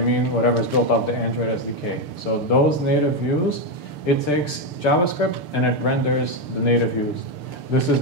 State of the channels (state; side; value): late; right; 6.8 ms